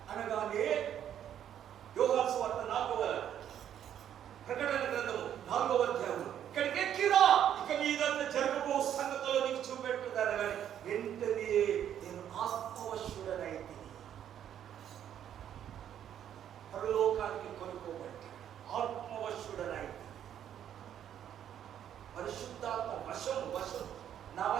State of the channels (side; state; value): left; quieter; 10.0 dB